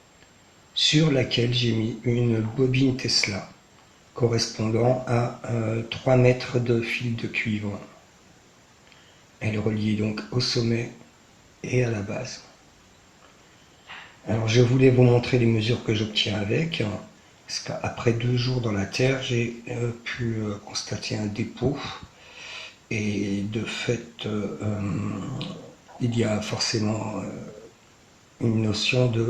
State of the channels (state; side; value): identical; both; correlation 1.00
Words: sur laquelle j'ai mis une bobine Tesla correspondant à 3 mètres de fil de cuivre. Elle est reliée donc au sommet et à la base. Alors je voulais vous montrer les mesures que j'obtiens avec, parce qu'après 2 jours dans la terre, j'ai pu constater un dépôt, et de fait, il y a forcément une notion